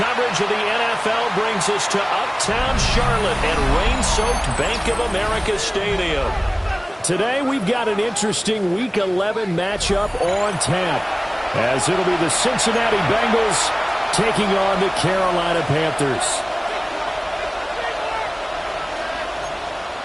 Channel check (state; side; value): identical; both; correlation 1.00